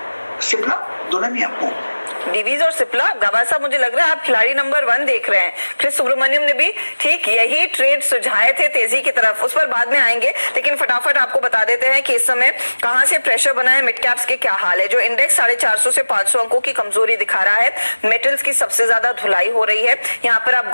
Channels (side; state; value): both; inverted; correlation -1.00